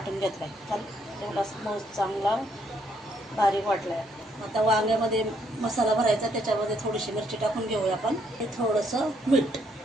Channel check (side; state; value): both; normal; correlation 0.71